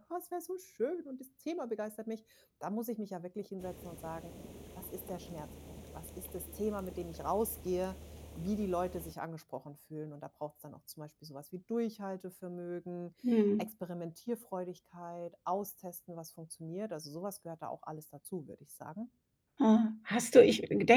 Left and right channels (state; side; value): identical; both; correlation 1.00